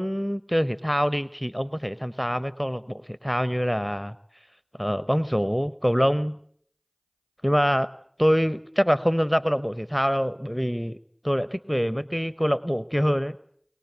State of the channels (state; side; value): identical; both; correlation 1.00